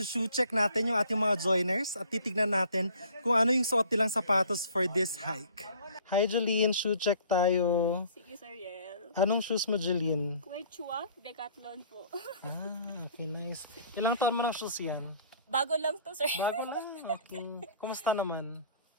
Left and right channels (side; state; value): both; inverted; correlation -0.52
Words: check natin yung ating mga joiners at titignan natin kung ano yung suot nilang sapatos for this hike. Hi Jeline, shoe check tayo. Sige, Sir Yel. Anong shoes mo, Jeline? Quechua, Decathlon po. Okay, nice. Ilang taon mo ng shoes yan? Bago lang to, Sir. Bago lang. Okay. Kumusta naman?